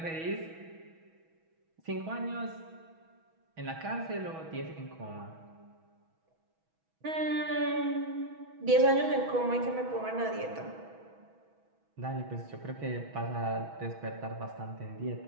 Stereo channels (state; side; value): late; left; 6.2 ms